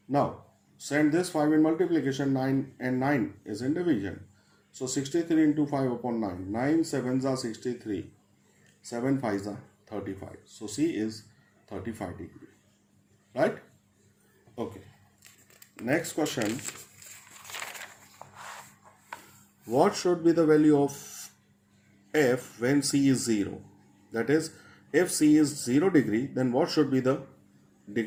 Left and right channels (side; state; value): both; identical; correlation 1.00